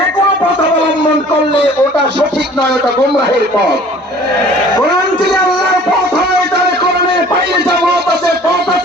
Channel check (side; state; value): both; normal; correlation 0.50